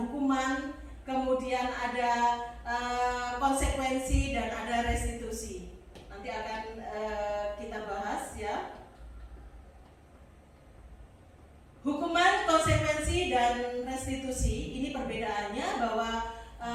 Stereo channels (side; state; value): both; identical; correlation 1.00